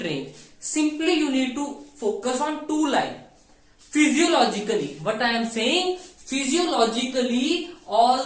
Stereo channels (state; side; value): identical; both; correlation 1.00